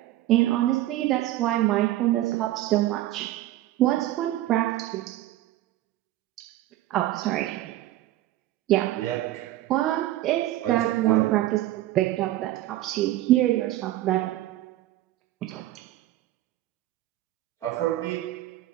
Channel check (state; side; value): quieter; left; 15.1 dB